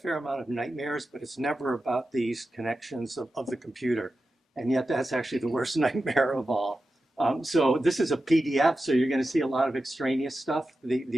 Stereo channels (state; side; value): normal; both; correlation 0.92